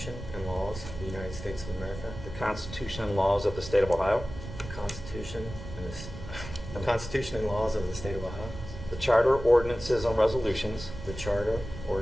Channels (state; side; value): noise; right; rumble, 11 dB below the sound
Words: and laws of the United States of America, the Constitution and laws of the State of Ohio, the Constitution and laws of the State of Ohio, the Charter, ordinances, and resolutions the Charter,